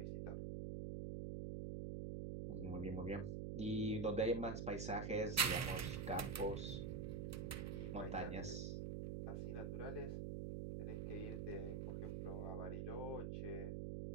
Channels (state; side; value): noise; right; hum, 2 dB below the sound